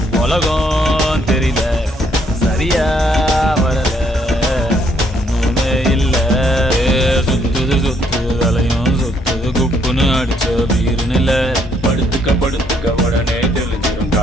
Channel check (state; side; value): normal; both; correlation 0.69